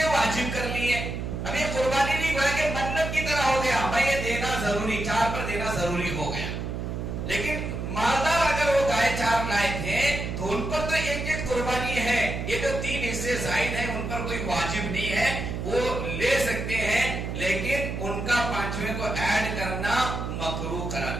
واجب کر لیے. اب یہ قربانی نہیں ہوا کہ منت کی طرح ہو گیا، بھائی یہ دینا ضروری، 4 پر دینا ضروری ہو گیا. لیکن مالدار اگر وہ گائے 4 لائے تھے تو ان پر تو ایک قربانی ہے. یہ جو 3 حصے زائد ہیں ان پر کوئی واجب نہیں ہے، وہ لے سکتے ہیں، لیکن ان کا 5ویں کو ایڈ کرنا مکروہ قرار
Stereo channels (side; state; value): right; noise; hum, 4 dB below the sound